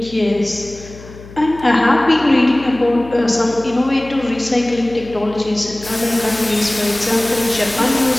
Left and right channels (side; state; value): left; noise; hum, 18 dB below the sound